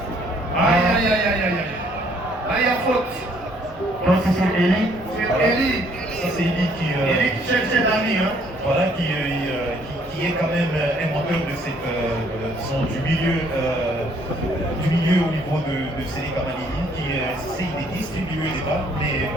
Aïe aïe aïe aïe aïe. Là il y a faute. Donc c'est sur Eli. C'est Eli. Ça, c'est Eli qui cherche ses amis. Hein. Voilà, qui est quand même un moteur de cette, du milieu au niveau de Seleka Malini, qui essaye de distribuer les balles, mais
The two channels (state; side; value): normal; both; correlation 0.64